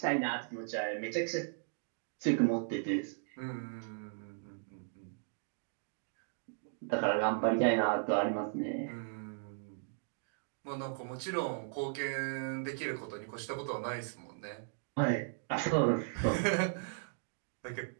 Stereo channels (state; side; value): silent; left; digital silence